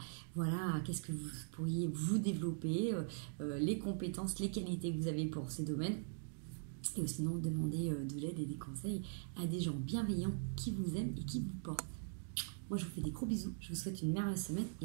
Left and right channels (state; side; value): silent; left; digital silence